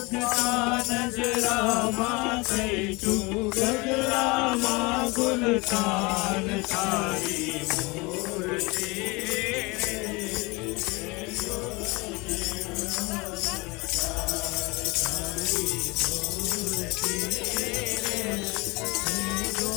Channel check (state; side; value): quieter; right; 25.6 dB